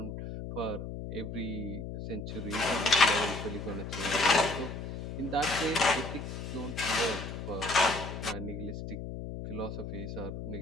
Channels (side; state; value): left; noise; hum, 7 dB below the sound